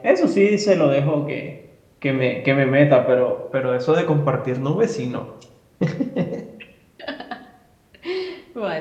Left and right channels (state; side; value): identical; both; correlation 1.00